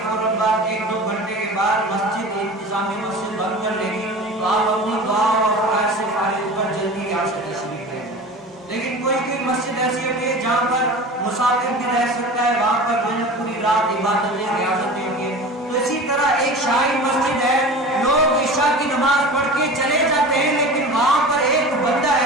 فوراً بعد 1-2 گھنٹے کے بعد مسجد انتظامی مسجد بند کر لے گی، تو آپ اپنی دعا اور افکار سے فارغ ہو کر جلدی یہاں سے تشریف لیں۔ لیکن کوئی مسجد ایسی ہوتی ہے جہاں پر مسافر بھی رہ سکتا ہے، وہاں پر جو ہے پوری رات عبادتیں ریاضتیں ہوں گی۔ تو اسی طرح ایک شاہی مسجد ہے، لوگ عشاء کی نماز پڑھ کے چلے جاتے ہیں، لیکن وہاں پر ایک بندہ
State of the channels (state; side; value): normal; both; correlation 0.35